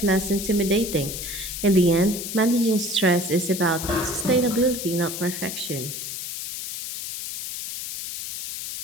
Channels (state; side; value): noise; left; hiss, 7 dB below the sound